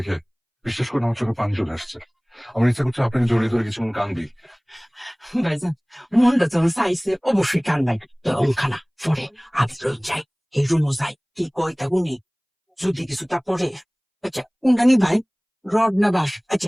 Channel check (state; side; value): identical; both; correlation 1.00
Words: বিশ্বাস করে আমার চোখে পানি চলে আসছে। আমার ইচ্ছা করছে আপনাকে জড়িয়ে ধরে কিছুক্ষণ কান্দি। ভাইজান মনটা যখন চাইছে অবশ্যই কান্দাই, তো অঙ্কানা পরে আগে রই যাই, এই রুমও যাই, কি কয় তা গুনি যদি কিছু তা পরে। আচ্ছা কোনটা নি ভাই, রড না বাস?